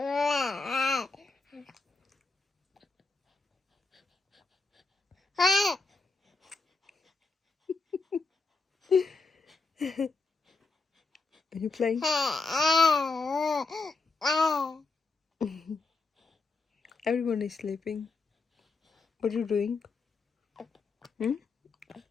you playing? Everyone is sleeping. What are you doing?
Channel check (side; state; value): right; quieter; 3.9 dB